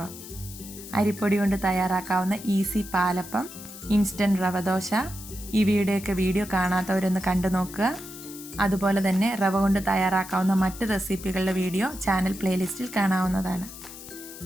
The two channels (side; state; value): left; noise; hiss, 14 dB below the sound